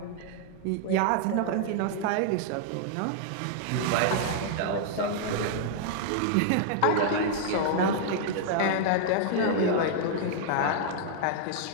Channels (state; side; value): different; both; correlation -0.01